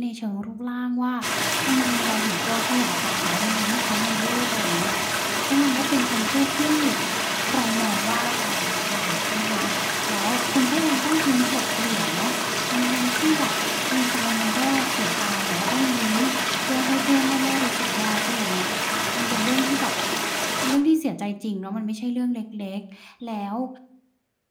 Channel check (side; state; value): both; identical; correlation 1.00